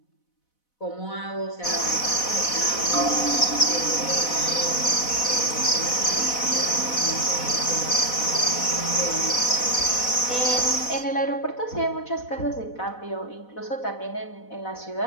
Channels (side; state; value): right; late; 4.0 ms